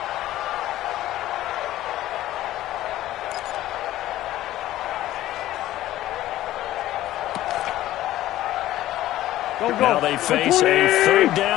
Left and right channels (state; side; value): quieter; right; 14.5 dB